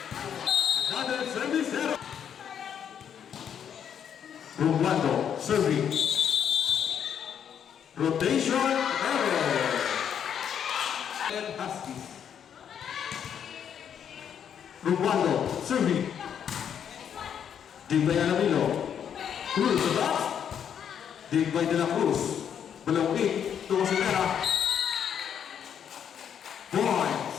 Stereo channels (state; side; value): quieter; right; 8.5 dB